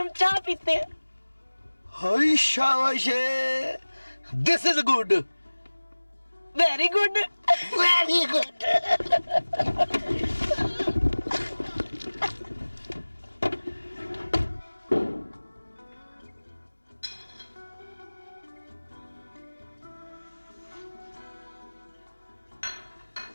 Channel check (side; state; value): both; inverted; correlation -1.00